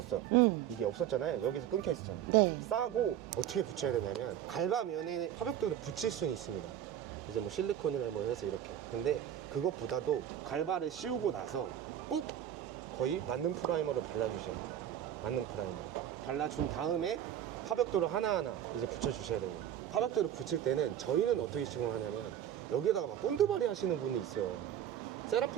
이게 없었잖아요. 여기서 끊겨 있었잖아요. 네. 싸고 어떻게 붙여야 되냐면 갈바면에 파벽돌을 붙일 수는 있습니다. 이제 뭐 실리콘이나 뭐 해서 이렇게. 근데 그것보다도 갈바를 씌우고 나서 꼭 거의 만능 프라이머를 발라주셔야 돼요. 만능 프라이머 발라준 다음에 파벽돌을 하나하나 이제 붙여주셔야 되는 거예요. 파벽돌을 붙일 때는 저희는 어떻게 시공하냐면 여기에다가 막 본드바리 하시는 분이 있어요.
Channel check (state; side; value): quieter; left; 10.6 dB